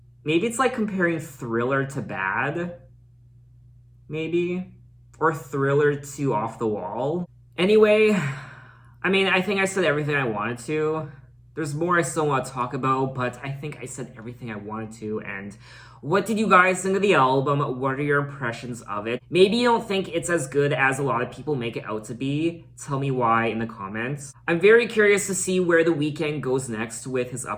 maybe it's like comparing Thriller to Bad. Maybe. Or Thriller to Off the Wall. Anyway, I mean, I think I said everything I wanted to. There's more I still want to talk about, but I think I said everything I wanted to. And what did you guys think of the album? What are your impressions of it? Maybe you don't think it's as good as a lot of people make it out to be. Tell me why in the comments. I'm very curious to see where The Weeknd goes next with his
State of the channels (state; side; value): identical; both; correlation 1.00